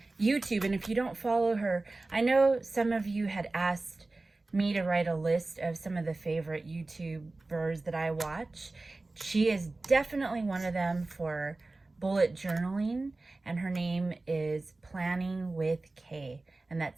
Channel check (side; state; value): left; quieter; 3.2 dB